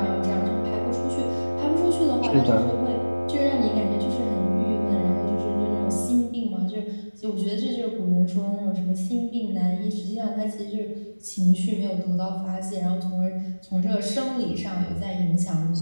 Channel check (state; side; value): inverted; both; correlation -1.00